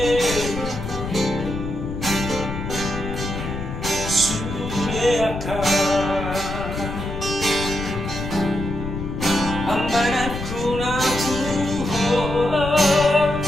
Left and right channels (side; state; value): left; noise; rumble, 6 dB below the sound